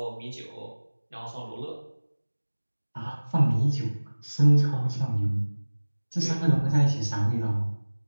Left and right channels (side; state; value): both; inverted; correlation -1.00